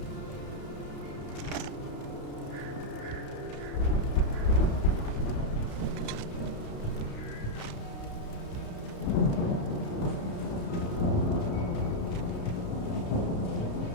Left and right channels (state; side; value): late; right; 32 ms